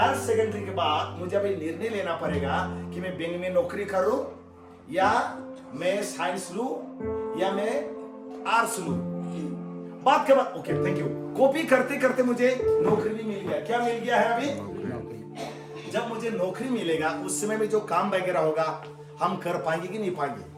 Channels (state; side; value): identical; both; correlation 1.00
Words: सेकेंडरी के बाद मुझे अभी निर्णय लेना पड़ेगा कि मैं बैंक में नौकरी करूं, या मैं साइंस लूं, या मैं आर्ट्स लूं। बात के बाद ओके थैंक यू, कॉपी करते करते मुझे नौकरी भी मिल गया। क्या मिल गया है अभी, जब मुझे नौकरी मिलेगा उस समय में जो काम वगैरह होगा हम कर पाएंगे कि नहीं पाएंगे।